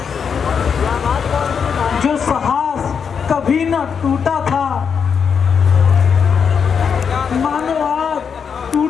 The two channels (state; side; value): quieter; right; 6.6 dB